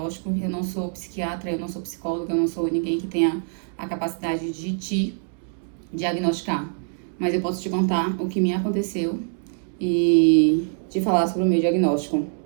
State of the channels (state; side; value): silent; left; digital silence